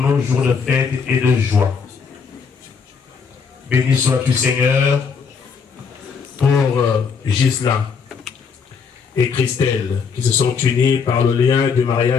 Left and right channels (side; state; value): right; quieter; 5.8 dB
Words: jour de fête et de joie. Béni sois-tu, Seigneur, pour Gisela et Christelle qui se sont unis par le lien du